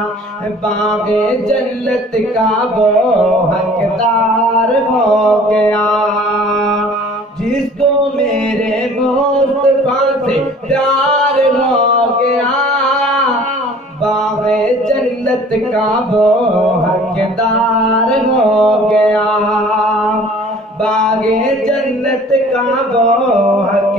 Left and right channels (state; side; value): normal; both; correlation 0.49